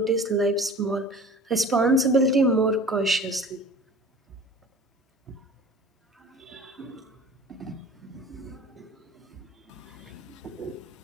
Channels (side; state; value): both; normal; correlation 0.42